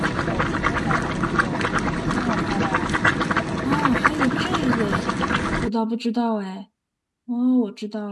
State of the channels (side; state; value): both; identical; correlation 1.00